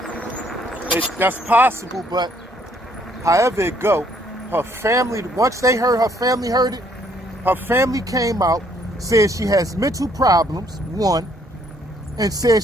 That's possible, but however it go, her family, once they heard, her family heard it, her family came out, said she has mental problems, one, and said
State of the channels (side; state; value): both; normal; correlation 0.66